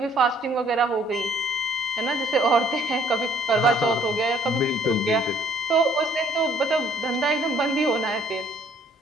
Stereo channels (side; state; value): both; normal; correlation 0.61